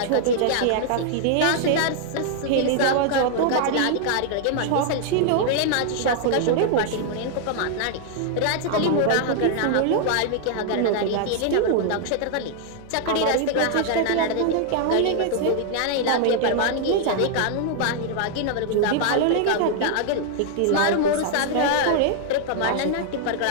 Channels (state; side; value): different; both; correlation 0.00